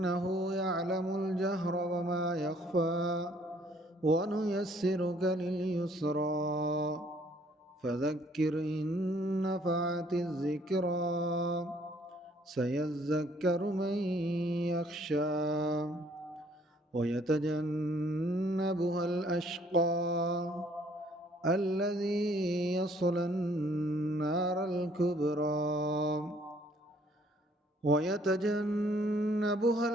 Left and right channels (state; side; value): normal; both; correlation 0.62